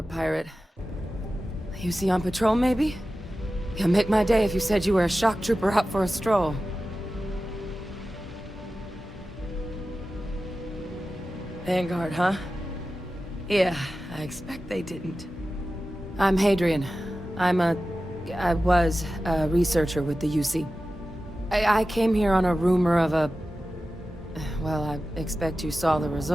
pirate. You see on patrol, maybe? You'd make my day if you said you were a shock trooper out for a stroll. Vanguard, huh? Yeah, I expect they didn't. I'm Hadrian. I was a researcher with the UC. I came here on a rumor of a... Well, I expect you saw the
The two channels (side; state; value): both; normal; correlation 0.94